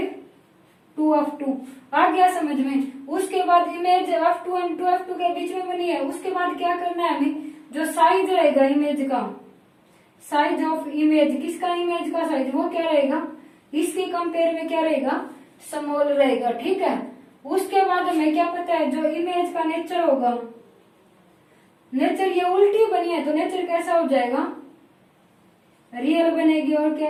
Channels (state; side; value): identical; both; correlation 1.00